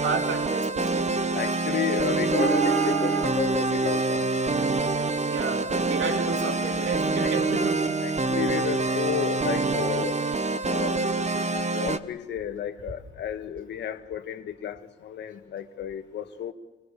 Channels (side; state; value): both; normal; correlation 0.30